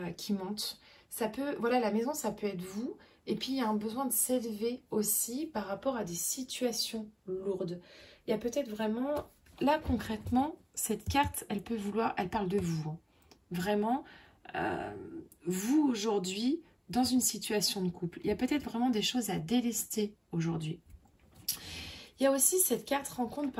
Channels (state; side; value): identical; both; correlation 1.00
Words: qui montent. Ça peut, voilà, la maison, ça peut être vous. Et puis, il y a un besoin de s'élever aussi par rapport à des situations lourdes. Il y a peut-être vraiment, là concrètement, cette carte, elle peut vouloir, elle parle de vous. Hein. Vraiment, vous aujourd'hui, dans une situation de couple. Il y a peut-être vraiment des choses à délester aujourd'hui. Il y a aussi cette carte rencontre